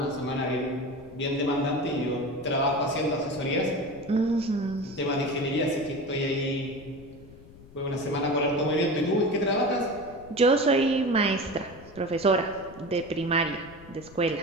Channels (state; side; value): noise; left; rumble, 20 dB below the sound